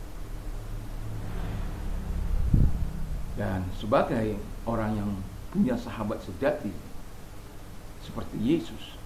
Dan sebagai orang yang punya sahabat sejati seperti Yesus,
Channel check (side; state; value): both; identical; correlation 1.00